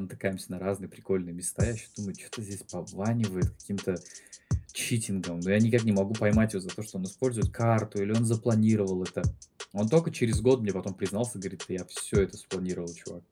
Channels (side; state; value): both; identical; correlation 1.00